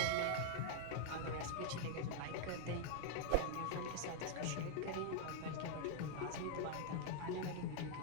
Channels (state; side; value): different; both; correlation 0.00